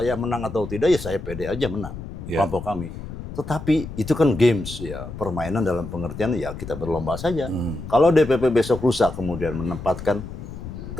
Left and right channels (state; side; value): noise; left; rumble, 10 dB below the sound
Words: menang atau tidak, ya saya pede aja menang, Ya. kelompok kami. Tetapi itu kan games ya, permainan dalam pengertian ya kita berlomba saja. Kalau DPP besok lusa kemudian menempatkan